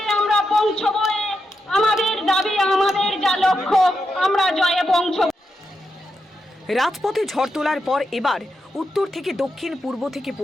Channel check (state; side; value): normal; both; correlation 0.85